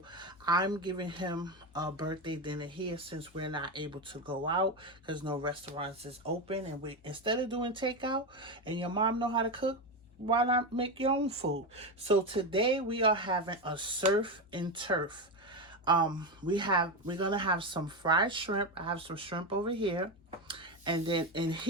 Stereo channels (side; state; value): both; normal; correlation 0.14